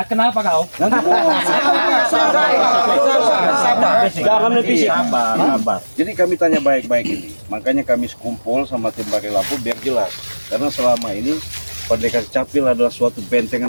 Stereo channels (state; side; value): inverted; both; correlation -1.00